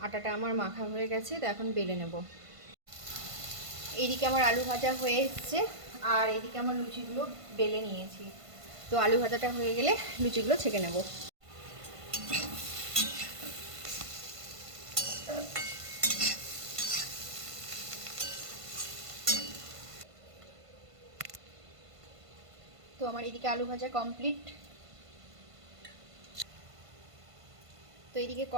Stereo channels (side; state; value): left; late; 1.5 ms